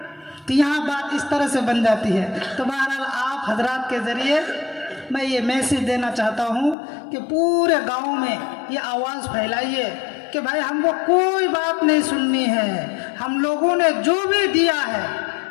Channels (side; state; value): right; drops out; at 6.8 s